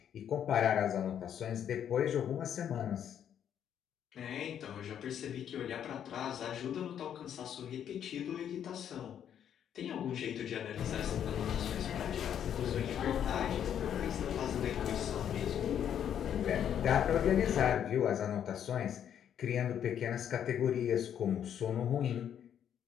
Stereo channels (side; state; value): right; quieter; 9.3 dB